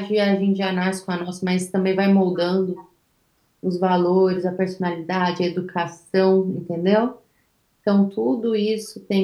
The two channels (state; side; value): identical; both; correlation 1.00